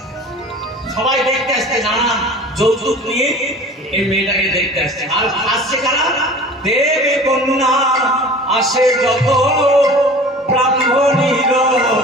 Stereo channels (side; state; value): both; normal; correlation 0.41